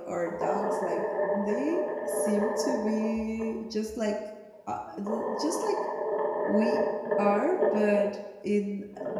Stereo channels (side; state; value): both; identical; correlation 1.00